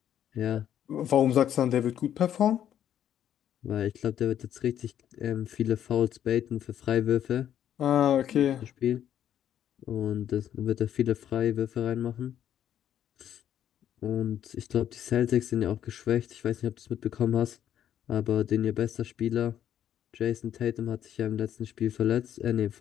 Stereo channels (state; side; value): quieter; right; 10.3 dB